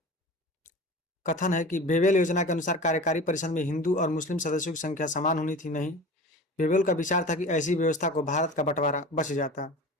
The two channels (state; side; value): normal; both; correlation 0.36